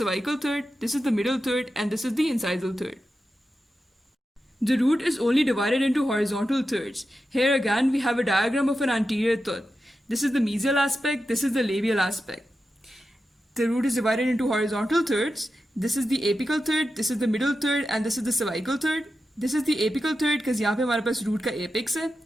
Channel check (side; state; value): both; normal; correlation 0.90